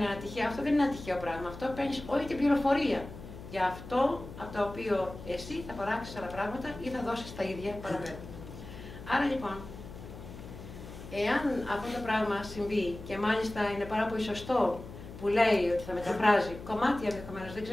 ένα τυχαίο, αυτό δεν είναι ένα τυχαίο πράγμα. Αυτό παίρνει όλη την πληροφορία για αυτό από το οποίο εσύ θα παράξεις άλλα πράγματα ή θα δώσεις τα ίδια παραπέρα. Άρα λοιπόν, εάν αυτό το πράγμα συμβεί και μάλιστα είναι πάρα πολύ σωστό που λέει ότι θα μεταφράζει κομμάτια ενδεχομένως, δεν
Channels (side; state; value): left; noise; hum, 13 dB below the sound